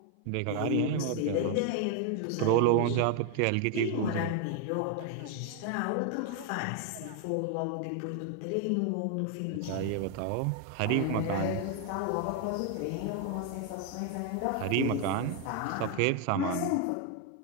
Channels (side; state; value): both; different; correlation 0.00